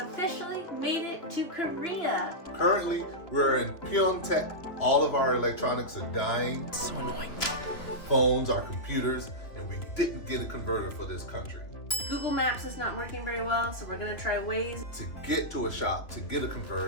officially made it to Korea. Currently, we're in Pyeongtaek. All of our electronics are dying. So annoying. Phones, our computers, and we didn't get a converter for this country. Google Maps is not working very well, so we're gonna try Waze. To get to a shop, to get a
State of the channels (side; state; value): right; late; 2.9 ms